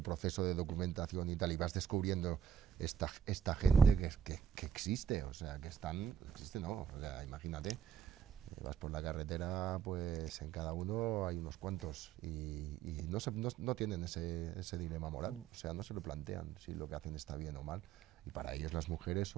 proceso de documentación y tal, y vas descubriendo esta gente que existe, o sea, existe no, o sea, imagínate, vas por la carretera, pues en cada uno hay unos cuantos y no tienen ese dilema moral, o sea, no se lo plantean si lo que hacen está bien o mal. Y para ellos las mujeres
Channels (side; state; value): left; quieter; 8.0 dB